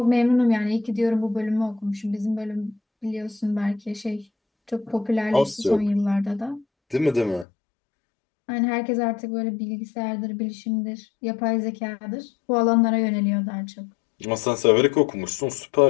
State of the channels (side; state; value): right; drops out; at 7.5 s